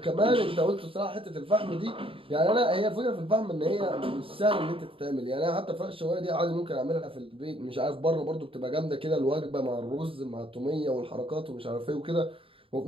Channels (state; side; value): late; left; 0.26 ms